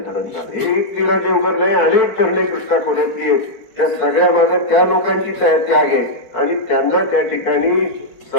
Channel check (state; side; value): late; right; 5.1 ms